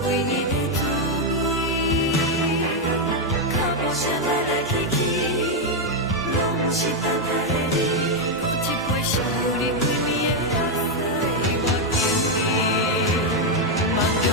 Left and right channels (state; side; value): normal; both; correlation 0.02